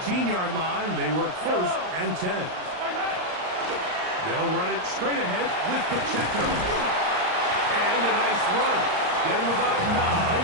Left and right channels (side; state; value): left; late; 39 ms